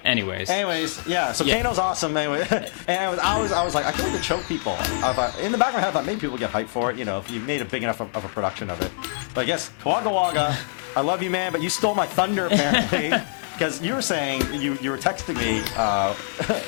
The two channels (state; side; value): silent; right; digital silence